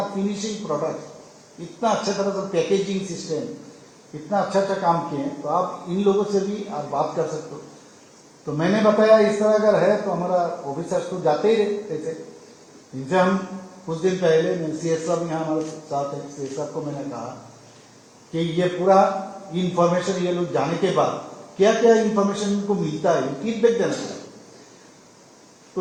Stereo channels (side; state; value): both; identical; correlation 1.00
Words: फिनिशिंग प्रोडक्ट, इतना अच्छा तरह से पैकेजिंग सिस्टम, इतना अच्छा काम किए हैं, तो आप इन लोगों से भी आप बात कर सकते हो। तो मैंने बताया इस तरह अगर है तो हमारा ऑफिसर्स तो जाते ही रहते थे, इनसे हम कुछ दिन पहले CS साहब यहाँ हमारे साथ है, CS साहब को मैंने कहा कि ये पूरा इंफॉर्मेशन ये लोग जाने के बाद क्या क्या इंफॉर्मेशन इनको मिलता है फीडबैक देना चाहिए।